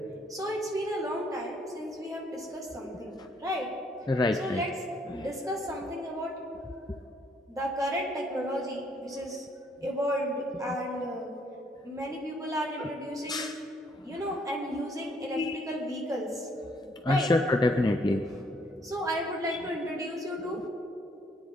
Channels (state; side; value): normal; both; correlation 0.67